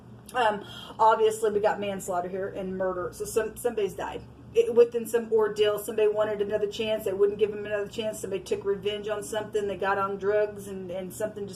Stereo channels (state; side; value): identical; both; correlation 1.00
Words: Obviously, we got manslaughter here and murder. So somebody's died. Within some ordeal, somebody wanted another chance. They wouldn't give them another chance. Somebody took revenge on something. They got on drugs, and something